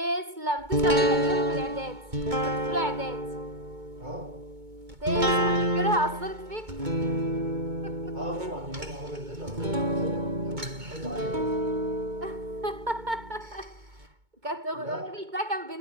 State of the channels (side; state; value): left; late; 2.2 ms